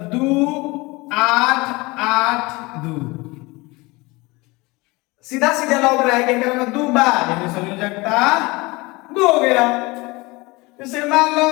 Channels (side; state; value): right; quieter; 23.6 dB